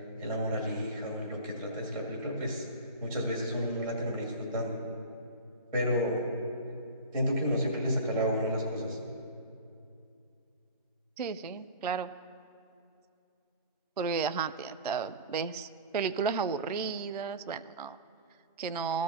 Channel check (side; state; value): both; inverted; correlation -0.34